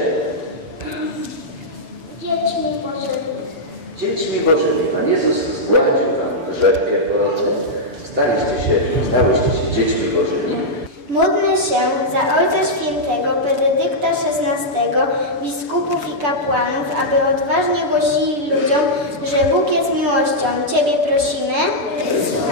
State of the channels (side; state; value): left; late; 6.9 ms